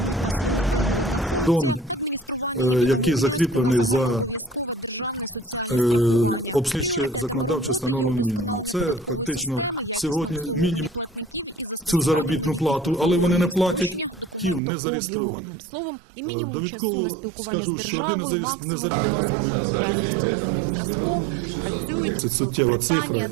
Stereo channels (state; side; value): drops out; left; at 14.6 s